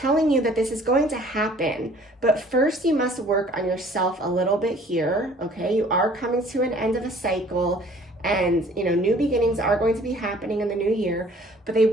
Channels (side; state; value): both; normal; correlation 0.54